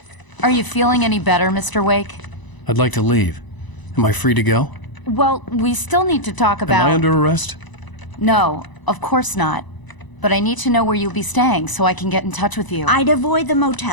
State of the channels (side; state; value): right; late; 1.0 ms